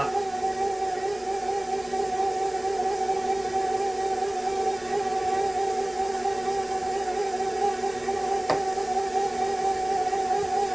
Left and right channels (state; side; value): noise; left; rumble, 26 dB below the sound